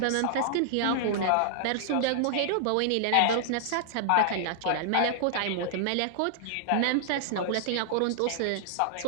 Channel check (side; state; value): both; different; correlation -0.01